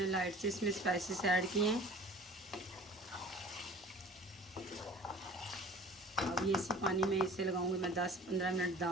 लाइट से इसमें स्पाइसेस ऐड किए हैं। अब ये इसी पानी में इसे लगाऊंगी मैं 10-15 मिनट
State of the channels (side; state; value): both; normal; correlation 0.44